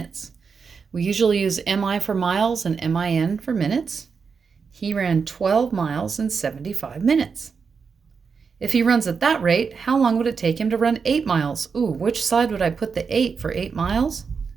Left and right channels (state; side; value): quieter; left; 5.6 dB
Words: We usually use MI for miles and MIN for minutes. He ran 12 miles in 75 minutes. If he runs at that rate, how long would it take him to run 8 miles? Ooh, which side would I put the 8 for 8 miles?